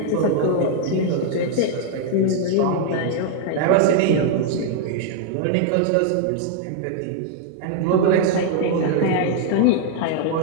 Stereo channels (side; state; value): both; different; correlation 0.00